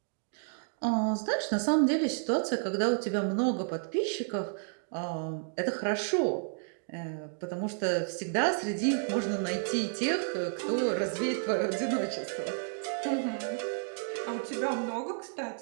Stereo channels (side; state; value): left; silent; digital silence